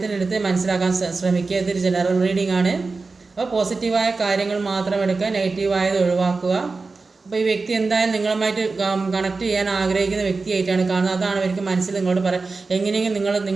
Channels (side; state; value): left; quieter; 4.0 dB